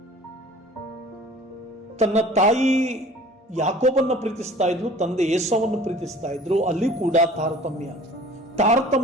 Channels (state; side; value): normal; both; correlation 0.47